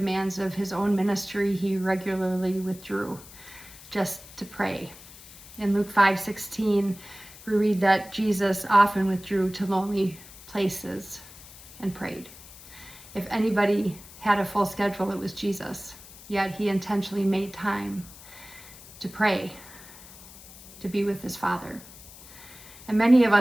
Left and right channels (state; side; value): noise; left; hiss, 18 dB below the sound